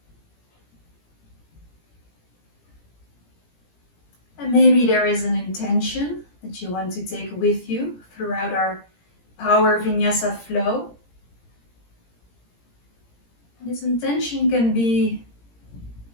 And maybe there is an intention that you want to take with you throughout our power Vinyasa flow. And this intention can be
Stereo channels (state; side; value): late; right; 17 ms